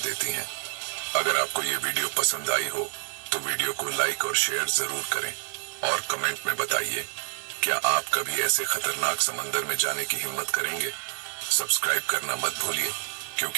हैं। अगर आपको ये वीडियो पसंद आई हो तो वीडियो को लाइक और शेयर जरूर करें और कमेंट में बताइए, क्या आप कभी ऐसे खतरनाक समंदर में जाने की हिम्मत करेंगे? सब्सक्राइब करना मत भूलिए,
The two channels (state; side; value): silent; left; digital silence